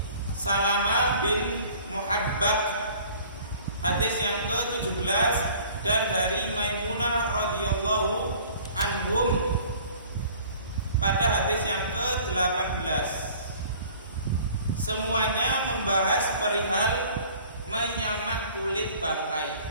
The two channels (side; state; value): both; inverted; correlation -0.50